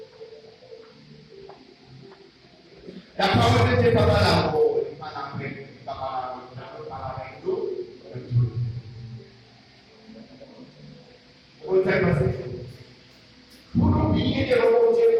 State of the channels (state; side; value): identical; both; correlation 1.00